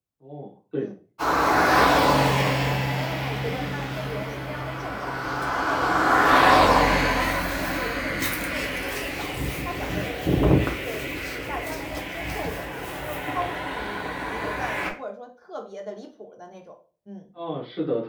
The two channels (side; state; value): both; identical; correlation 1.00